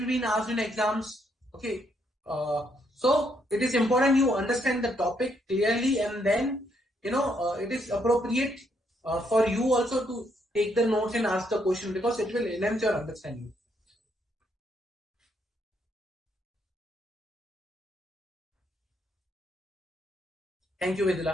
been asked in exams. Okay. So it is important you understand the topic clearly, and then it is appropriate for you also to take the notes and ask the question, because it will enhance your understanding. Thank you,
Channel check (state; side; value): normal; both; correlation 0.74